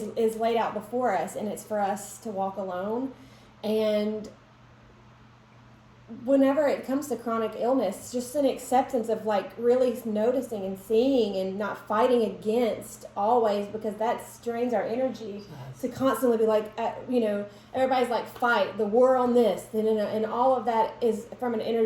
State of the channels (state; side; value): identical; both; correlation 1.00